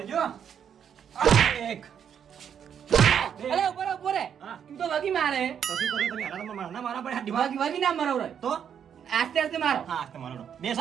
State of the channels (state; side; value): quieter; left; 8.3 dB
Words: એક અલે ઉપર રે હા. તું તો વગી મારે તો શું કર્યું તમે હારામાં મારના મારા પડે હાથ દિમાગ વગી ના મારો રે તો આસ્તે આસ્તે મારો હા તમારો